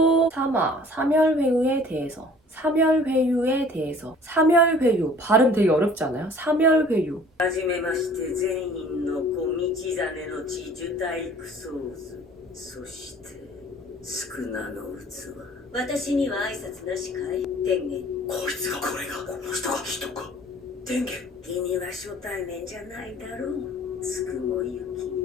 3화, 사멸회유에 대해서. 사멸회유. 발음 되게 어렵지 않아요? 사멸회유. はじめまして全員の子道真の地樹体育ソーズそして宿儺の器私には挨拶なしかい天元こいつがこれがこの人が人か天元君は初対面じゃないだろうつくもゆ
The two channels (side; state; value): both; normal; correlation 0.51